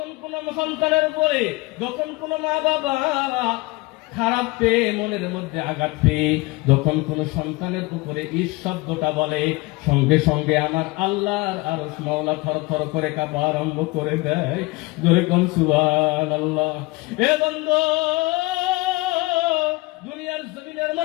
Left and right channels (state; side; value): quieter; right; 22.7 dB